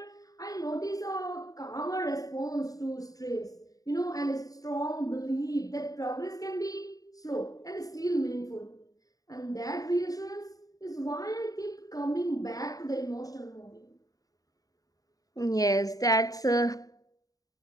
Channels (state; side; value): late; right; 0.18 ms